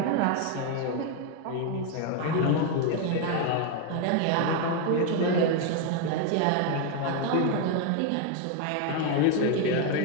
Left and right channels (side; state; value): both; different; correlation 0.01